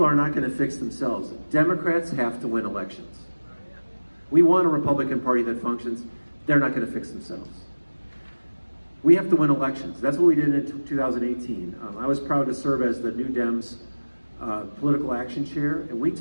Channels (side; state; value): both; inverted; correlation -1.00